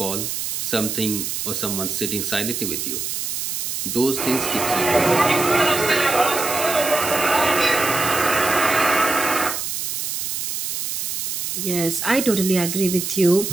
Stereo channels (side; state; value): right; noise; hiss, 3 dB below the sound